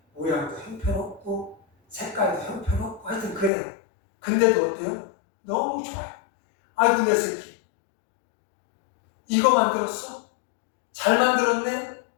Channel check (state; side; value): drops out; right; at 3.5 s